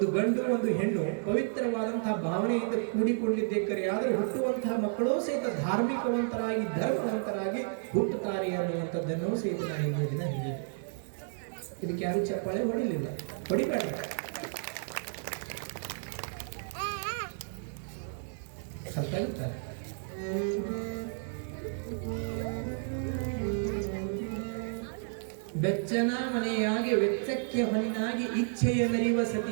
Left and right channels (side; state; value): left; silent; 57 dB below the other